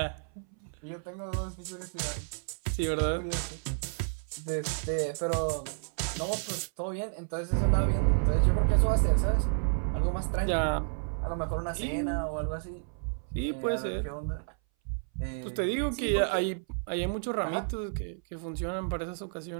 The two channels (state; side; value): silent; left; 57 dB below the other